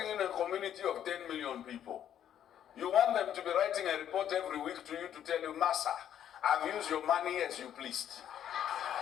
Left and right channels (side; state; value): right; quieter; 10.1 dB